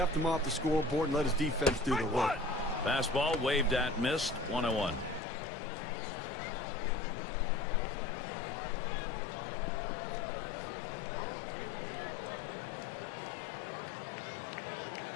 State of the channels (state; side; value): drops out; right; at 5.2 s